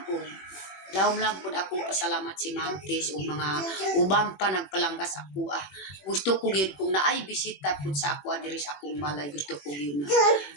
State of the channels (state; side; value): late; right; 21 ms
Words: o lawom lang pud akong pasalamat si Ma'am Tis o mga ubang pa nagpalanggas ako gusto ko gyud kung naay bisita pud sa ako diri sa akong balay gusto ko gyud na